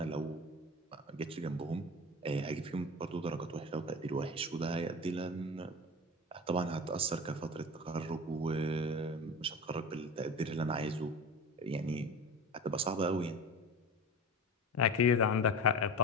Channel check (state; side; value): normal; both; correlation 0.31